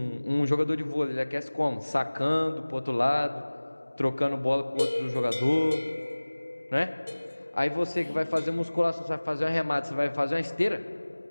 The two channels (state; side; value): inverted; both; correlation -1.00